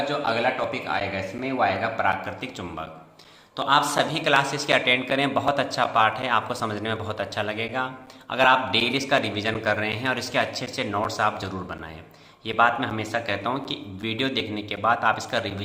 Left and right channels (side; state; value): both; identical; correlation 1.00